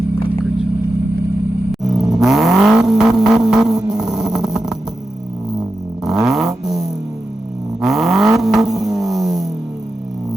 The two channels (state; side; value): normal; both; correlation 0.90